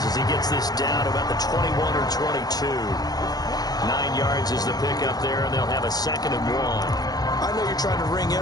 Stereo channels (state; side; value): late; right; 0.19 ms